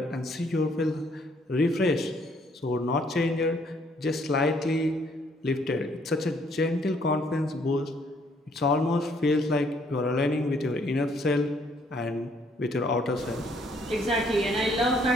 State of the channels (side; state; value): both; normal; correlation 0.66